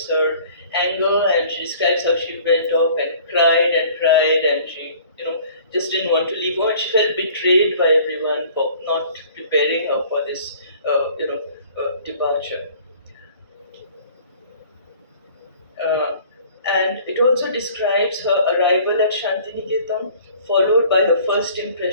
her anger, and she describes how she went off and cried, and she, just didn't want to leave home, and she felt betrayed by everyone for not preparing her for this, departure. Uh, and it also describes her arrival at Santiniketan, followed by her first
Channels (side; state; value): both; inverted; correlation -0.51